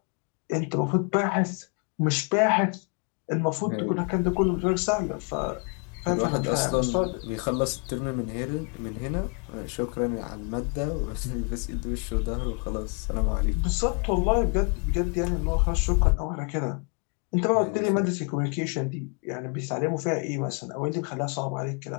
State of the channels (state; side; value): quieter; right; 36.7 dB